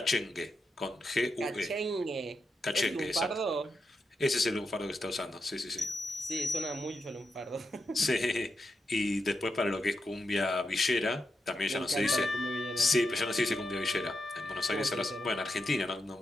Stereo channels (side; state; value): both; normal; correlation 0.85